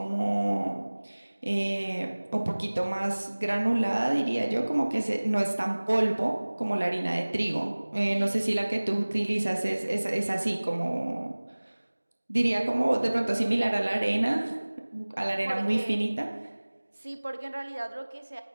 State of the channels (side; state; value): both; inverted; correlation -1.00